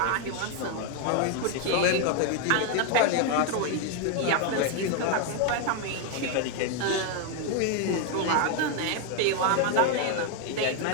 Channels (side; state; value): both; different; correlation 0.01